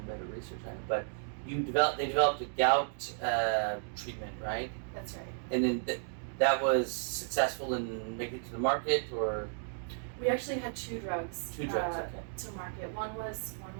better research on it, but they developed a gout treatment, right? That's right. And then that was successful in making it to the market, or? We actually had two drugs. Okay. To market. One was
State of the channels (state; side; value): silent; left; digital silence